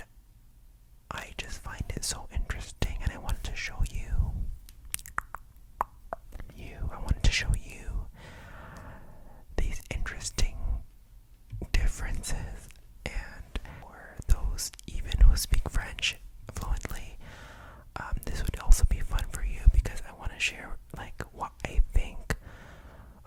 I just find it so interesting, and I wanted to show you these interesting differences, and for those even who speak French fluently, this would also be fun for you because I want to share like what I think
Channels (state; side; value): identical; both; correlation 1.00